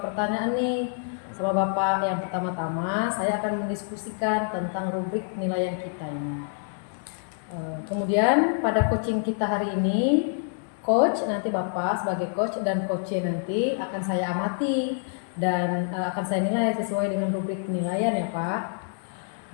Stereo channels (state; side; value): silent; right; digital silence